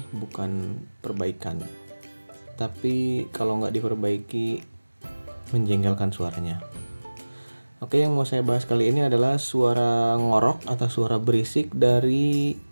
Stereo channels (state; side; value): inverted; both; correlation -1.00